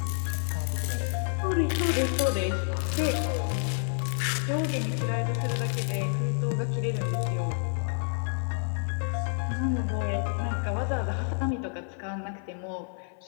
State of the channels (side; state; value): right; silent; 59 dB below the other